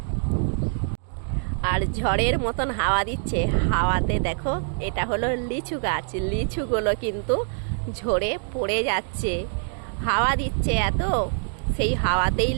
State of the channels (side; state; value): left; silent; 56 dB below the other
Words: আর ঝড়ের মতন হাওয়া দিচ্ছে, হাওয়াতে দেখো এটা হলো লিচু গাছ, লিচুগুলো কিন্তু ঝরে পড়ে যাচ্ছে। হাওয়া দিচ্ছে এত, সেই হাওয়াতেই